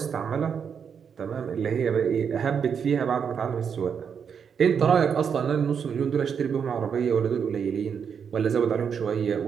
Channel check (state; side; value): quieter; left; 7.0 dB